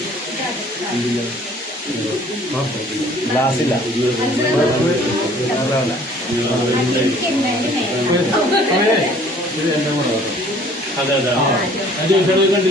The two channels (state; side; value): normal; both; correlation 0.54